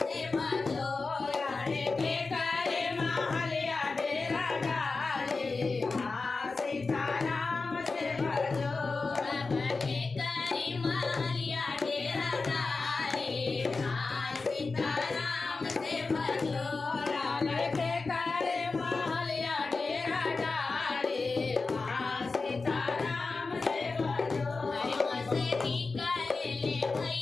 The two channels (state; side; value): quieter; right; 4.0 dB